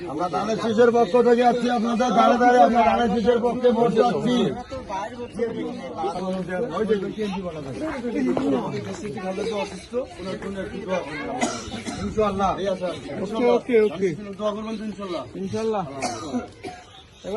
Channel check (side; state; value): both; identical; correlation 1.00